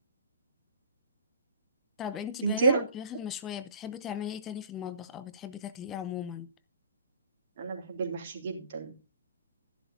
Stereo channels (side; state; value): both; inverted; correlation -0.50